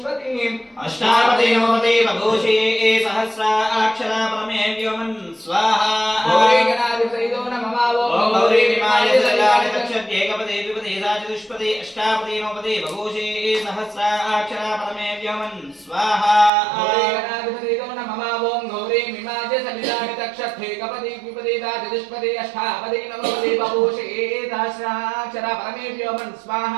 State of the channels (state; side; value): drops out; left; at 16.5 s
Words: అష్టాపతి నవపతి బభూషి సహస్రాక్షర పరమే వ్యోమన్ స్వాహా। గౌరీ గణాధిపతయో నమః। ఓం గౌరీ మిమాయ సలిలాని దక్షతే కవతి ద్విపదితా చతుష్పతి అష్టాపతి నవపతి బభూషి సహస్రాక్షర పరమే వ్యోమన్ స్వాహా। గౌరీ గణాధిపతయో నమః। ఓం గౌరీ మిమాయ సలిలాని దక్షతే కవతి ద్విపదితా చతుష్పతి अष्टापदी नवपदी बभूषि सहस्राक्षर परमेभ्यो मन